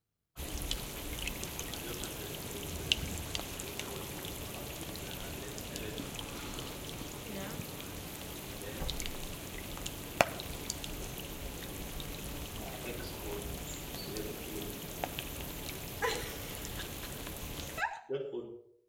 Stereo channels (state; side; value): identical; both; correlation 1.00